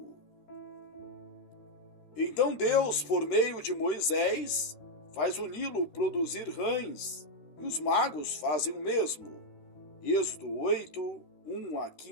Então Deus, por meio de Moisés, faz o Nilo produzir rãs, e os magos fazem o mesmo. Êxodo 8, 1 a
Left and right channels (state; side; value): late; right; 13 ms